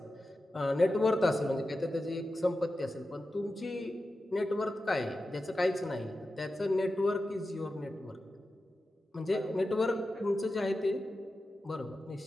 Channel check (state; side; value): normal; both; correlation 0.92